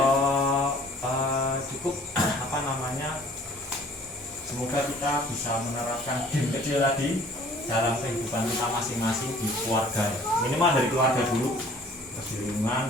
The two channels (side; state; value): both; normal; correlation 0.53